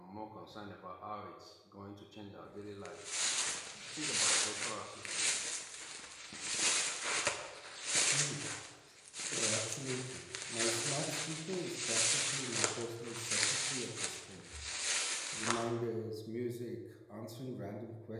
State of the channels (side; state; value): both; identical; correlation 1.00